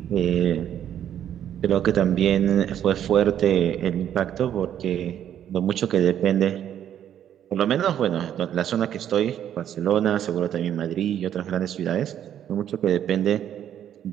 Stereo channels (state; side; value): quieter; left; 10.2 dB